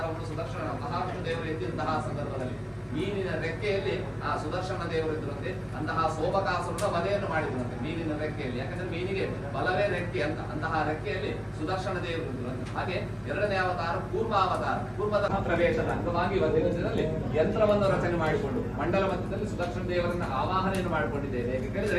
ಸುದರ್ಶನ ಮಹಾವಿಷ್ಣು ದೇವರು ಎತ್ತಿದಂತಹ ಸಂದರ್ಭದಲ್ಲಿ ಮೀನಿನ ರೆಕ್ಕೆಯಲ್ಲಿ ಆ ಸುದರ್ಶನ ದೇವರು ಇದ್ರಂತೆ. ಅಂತಹ ಸೋಮಕಾಸುರನ ವಧೆಯನ್ನು ಮಾಡಿದ್ರಂತೆ ಮೀನಿನ ರೆಕ್ಕೆಯಲ್ಲಿ. ಯಾಕಂದ್ರೆ ಮೀನಿಗೆ ಬಲವೇ ರೆಕ್ಕೆ ಅಂತ. ಅಂತಹ ರೆಕ್ಕೆಯಲ್ಲಿ ಸುದರ್ಶನ ದೇವರು ಇದ್ರಂತೆ. ಹಾಗೆ ಎರಡನೇ ಅವತಾರ ಕೂರ್ಮಾವತಾರ. ಕೂರ್ಮದ ಪ್ರವೇಶದ ಅಂಗವಾಗಿ ದಿನದಲ್ಲಿ ಯಂತ್ರವನ್ನು ರಚನೆ ಮಾಡಿಕೊಂಡು ಮಂಡಲ ಮಧ್ಯದಲ್ಲಿ ಸುದರ್ಶನ ದೇವರನ್ನ ಆವಾಹನೆಯನ್ನು ಮಾಡಿಕೊಂಡಿದ್ದೇವೆ. ಹೇಗೆ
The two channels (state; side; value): identical; both; correlation 1.00